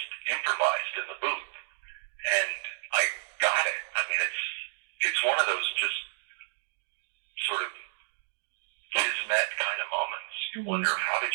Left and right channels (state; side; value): silent; left; digital silence